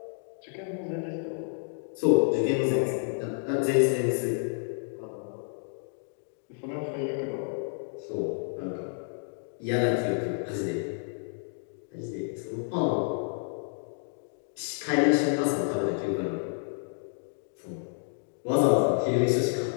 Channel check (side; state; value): right; silent; digital silence